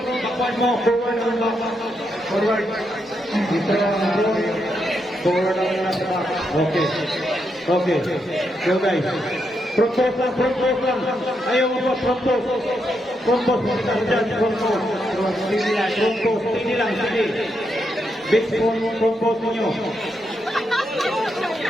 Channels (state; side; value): normal; both; correlation 0.81